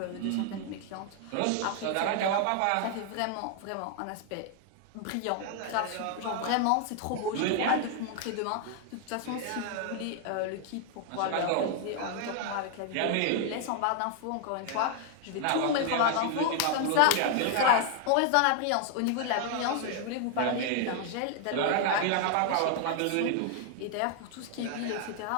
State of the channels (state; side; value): different; both; correlation 0.00